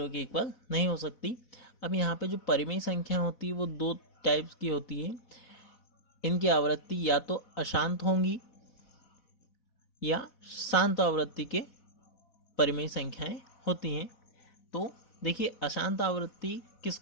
के इक्वल नहीं हो सकती। अब यहाँ पे जो परिमेय संख्या होती है वो दो टाइप्स की होती है। इनकी आवृत्ति या तो अशांत होंगी या शांत आवृत्ति के परिमेय संख्याएं होती हैं। तो देखिए, अशांत आवृत्ति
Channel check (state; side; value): late; right; 4.1 ms